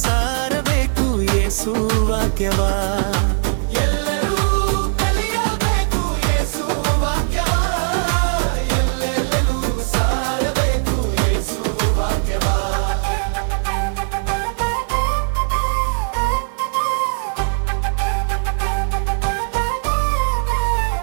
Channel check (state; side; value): silent; left; digital silence